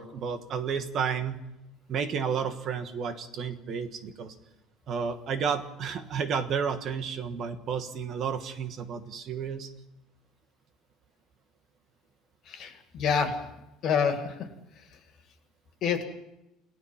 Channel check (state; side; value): normal; both; correlation 0.52